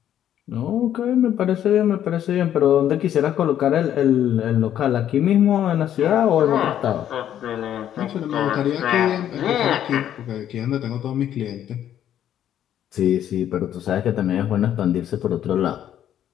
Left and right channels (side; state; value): right; quieter; 10.7 dB